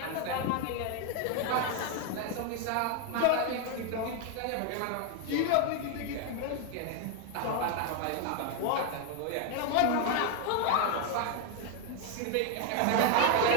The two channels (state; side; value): different; both; correlation 0.01